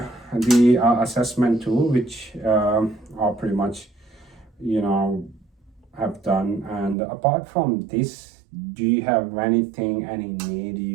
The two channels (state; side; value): drops out; left; at 7.0 s